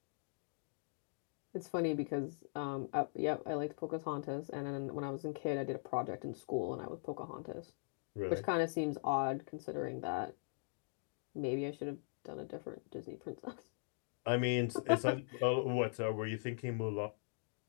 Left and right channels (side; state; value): right; silent; digital silence